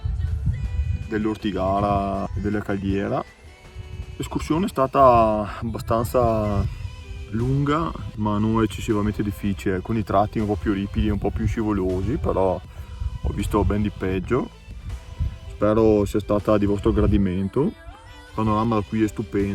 dell'Ortigara e della Caldiera. L'escursione è stata abbastanza lunga ma non eccessivamente difficile, alcuni tratti un po' più ripidi, un po' più scivolosi, però ho visto ben di peggio. Spero sia stata di vostro gradimento. Il panorama da qui è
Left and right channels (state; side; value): identical; both; correlation 1.00